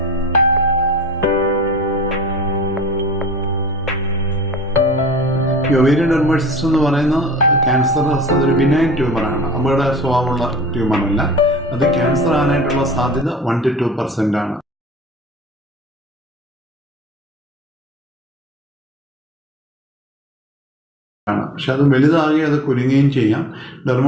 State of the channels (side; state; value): both; normal; correlation 0.46